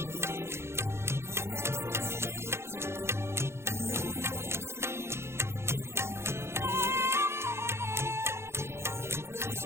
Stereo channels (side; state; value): left; late; 0.13 ms